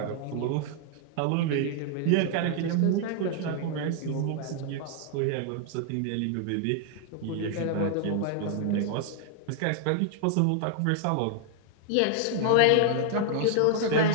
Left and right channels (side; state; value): both; different; correlation 0.00